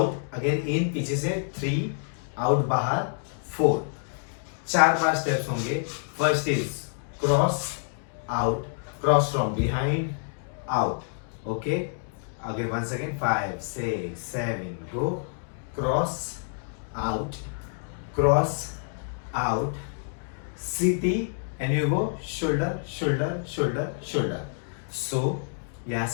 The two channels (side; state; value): right; silent; digital silence